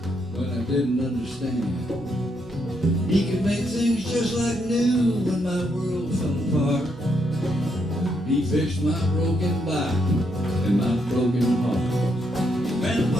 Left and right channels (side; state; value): both; normal; correlation 0.77